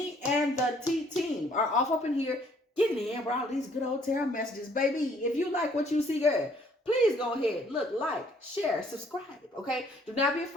and the T team are off up in here getting in with all these good old tarot messages. Baby, if you like what you see, girl, please go ahead, look, like, share, subscribe, okay? Do not be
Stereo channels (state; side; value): normal; both; correlation 0.62